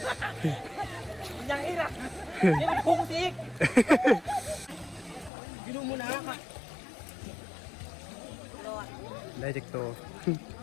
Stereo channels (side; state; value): right; drops out; at 5.3 s